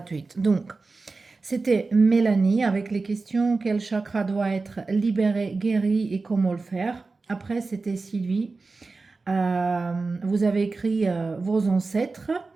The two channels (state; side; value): quieter; left; 3.9 dB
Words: Donc, c'était Mélanie avec les questions quel chakra doit être libéré, guéri et comment le faire. Après, c'était Sylvie. Vous avez écrit vos ancêtres.